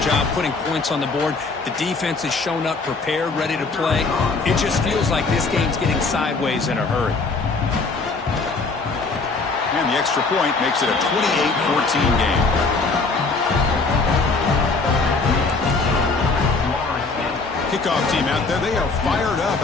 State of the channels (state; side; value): quieter; right; 4.0 dB